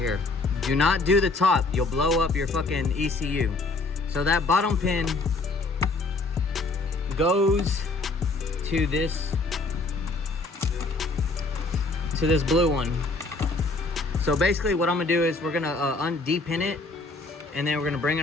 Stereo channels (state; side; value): quieter; right; 3.4 dB